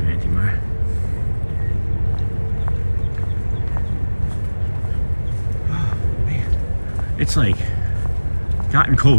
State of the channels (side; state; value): both; inverted; correlation -1.00